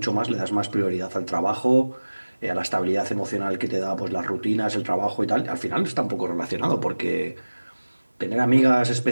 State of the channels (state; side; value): inverted; both; correlation -1.00